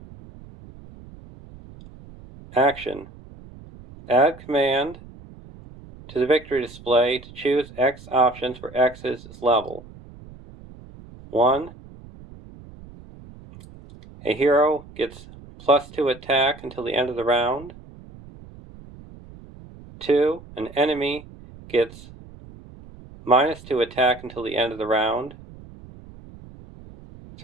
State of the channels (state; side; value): noise; right; rumble, 19 dB below the sound